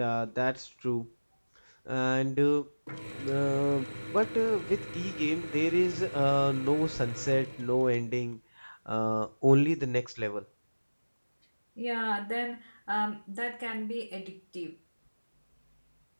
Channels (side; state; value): both; inverted; correlation -1.00